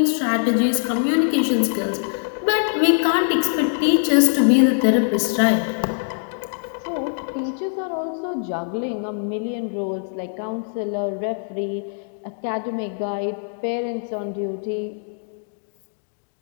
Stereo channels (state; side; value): silent; right; digital silence